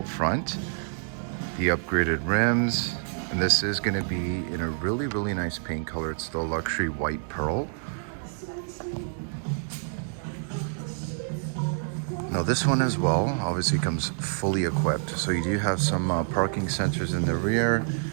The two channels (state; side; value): silent; left; digital silence